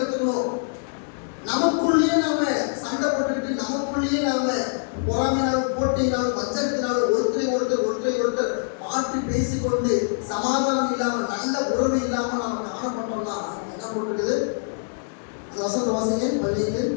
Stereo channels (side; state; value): right; silent; digital silence